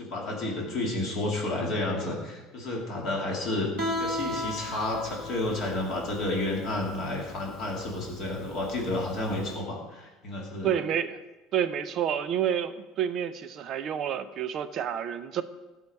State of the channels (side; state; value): both; normal; correlation 0.36